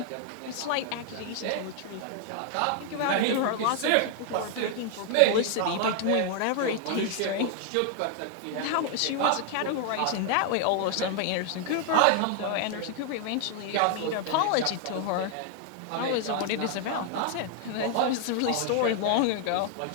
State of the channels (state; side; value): different; both; correlation 0.00